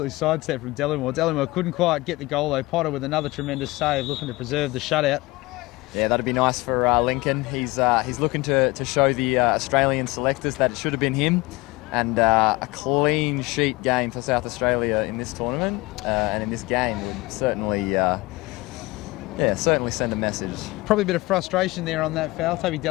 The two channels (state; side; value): quieter; right; 21.9 dB